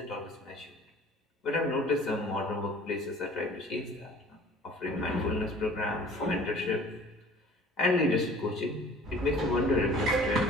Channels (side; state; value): both; normal; correlation 0.49